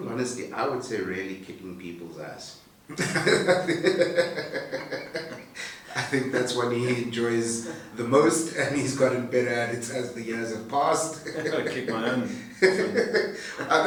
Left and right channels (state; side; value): identical; both; correlation 1.00